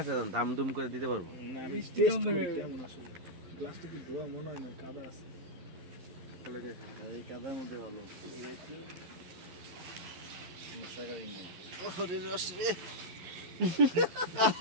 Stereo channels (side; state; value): left; late; 11 ms